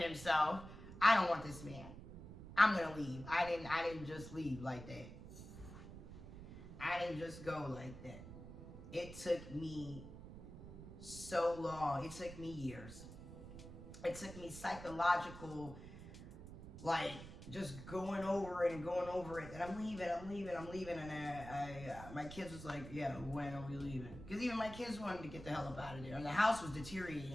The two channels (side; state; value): right; noise; rumble, 13 dB below the sound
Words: himself. I don't want this man. I'm gonna leave. I didn't just leave like that. I didn't just go like that. It took me so long. It took me years. It took me psychological, like, just going over it and going over it. And I'm leaving. And my kids was like, yeah, when are we leaving? Because even my kids wanted to get the hell up out of there. And the house was